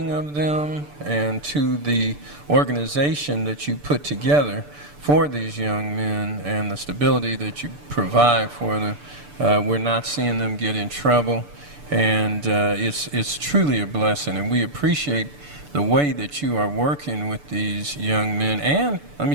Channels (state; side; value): late; left; 6.8 ms